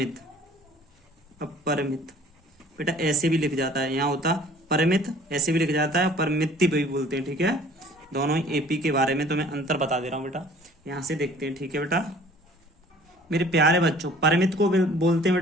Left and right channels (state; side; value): normal; both; correlation 0.52